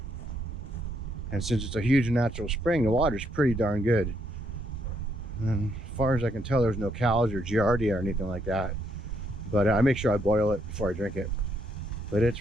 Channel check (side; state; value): both; normal; correlation 0.74